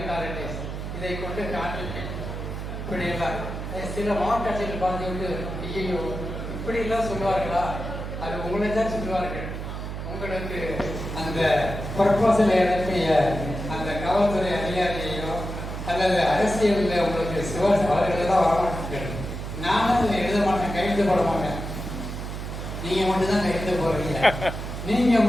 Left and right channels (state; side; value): noise; right; hum, 6 dB below the sound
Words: authorities, இதை கொண்டு காண்பிப்பேன். இப்படியெல்லாம் சில மாவட்ட ஆட்சியர்கள் பார்த்துவிட்டு, ஐயோ இப்படியெல்லாம் சொல்லுவார்களா? அது உங்களை தான் சொல்லுவார்கள். உங்களுக்கு அந்த ப்ரொபோசல் அனுப்பிய அந்த காவல்துறை அதிகாரியையோ அல்லது அரசியலில் உங்களுக்கு சிவாஸ் அவர்களெல்லாம் வரமாட்டேன். நானும் இதை எழுத மாட்டேன், கையெழுத்து போட மாட்டேன். நீங்கள் மட்டும்தான் கையெழுத்து போடுறீங்க, நீங்கள்